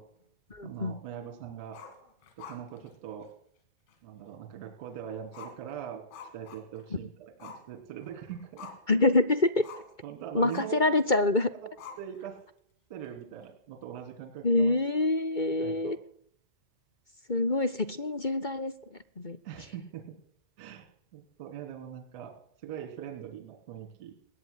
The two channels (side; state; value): right; late; 2.2 ms